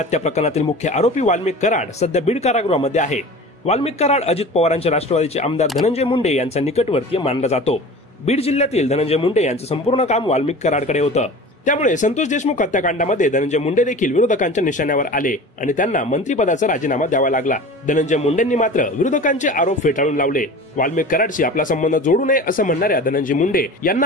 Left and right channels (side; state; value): both; normal; correlation 0.37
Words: प्रकरणातील मुख्य आरोपी वाल्मिक कराड सध्या बीड कारागृहामध्ये आहे। वाल्मिक कराड अजित पवारांच्या राष्ट्रवादीचे आमदार धनंजय मुंडे यांचा निकटवर्तीय मानला जातो। बीड जिल्ह्यातील धनंजय मुंडे यांचं संपूर्ण काम वाल्मिक कराडकडे होतं। त्यामुळे संतोष देशमुख हत्याकांडामध्ये धनंजय मुंडे देखील विरोधकांच्या निशाण्यावर आले आणि त्यांना मंत्रिपदाचा राजीनामा द्यावा लागला। धनंजय मुंडेंनी मात्र विरोधकांचे आरोप फेटाळून लावले। वाल्मिक कराडशी आपला संबंध जोडू नये असं म्हणणाऱ्या धनंजय मुंडे यांना